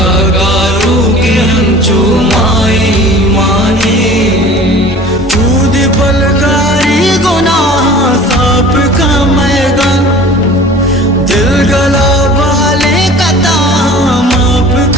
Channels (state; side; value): normal; both; correlation 0.44